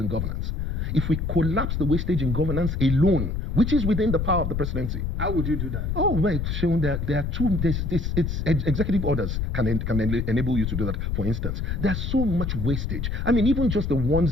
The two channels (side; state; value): left; noise; rumble, 1 dB below the sound